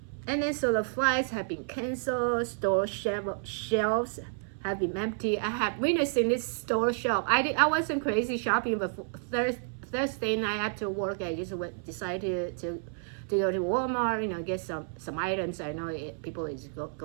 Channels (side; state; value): left; silent; 58 dB below the other